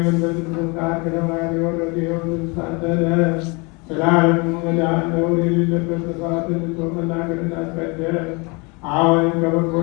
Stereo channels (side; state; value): right; quieter; 29.1 dB